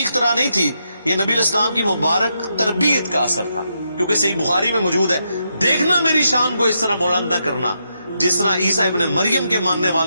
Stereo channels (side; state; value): both; inverted; correlation -0.81